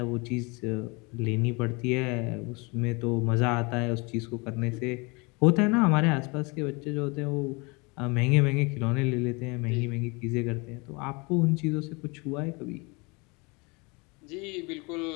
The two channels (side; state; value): right; quieter; 28.4 dB